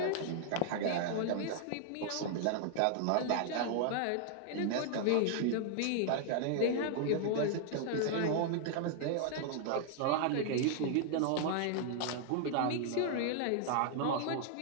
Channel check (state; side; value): different; both; correlation 0.00